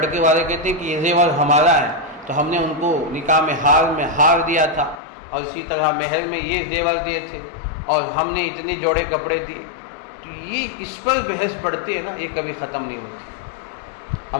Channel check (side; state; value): right; drops out; at 5.0 s